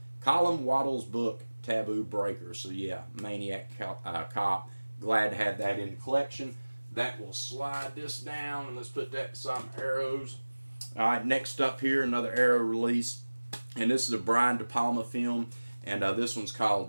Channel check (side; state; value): both; inverted; correlation -1.00